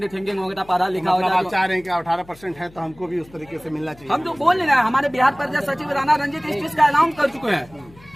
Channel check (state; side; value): noise; left; hum, 24 dB below the sound